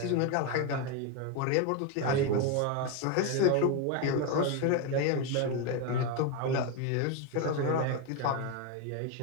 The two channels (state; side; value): different; both; correlation 0.02